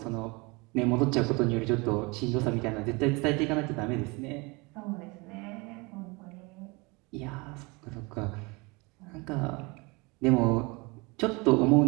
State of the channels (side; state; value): left; quieter; 26.9 dB